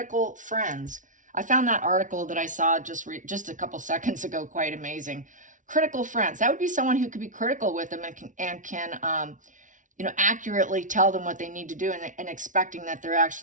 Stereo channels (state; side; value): late; left; 0.37 ms